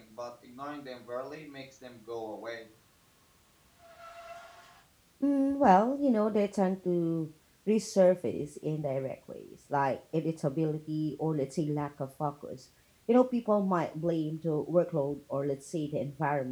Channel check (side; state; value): both; identical; correlation 1.00